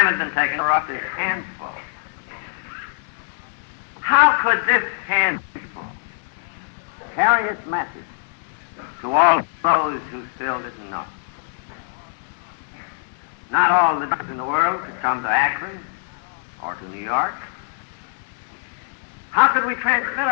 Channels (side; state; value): right; silent; digital silence